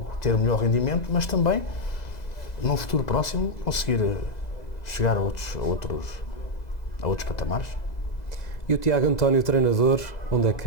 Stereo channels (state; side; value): late; right; 2.0 ms